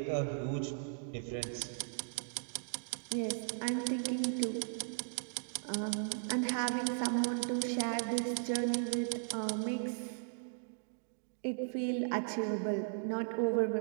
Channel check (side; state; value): left; silent; digital silence